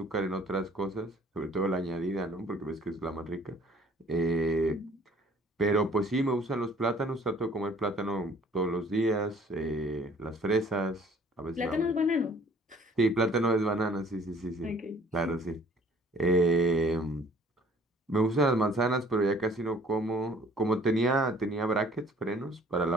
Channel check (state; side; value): normal; both; correlation 0.55